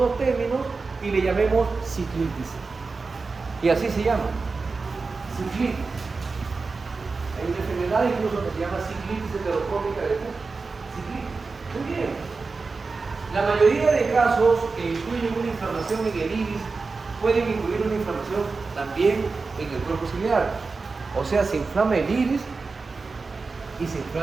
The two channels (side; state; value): left; quieter; 4.2 dB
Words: términos y le llamemos ciclitis. Y así se llama. Ciclitis. Hay una enfermedad incluso que se llama ciclitis heterocrónica de Cook. Ciclitis. Muy bien. La mayoría de casos que incluyen una inflamación en el iris pueden incluir una inflamación también en el cuerpo ciliar. O sea, se inflama el iris y se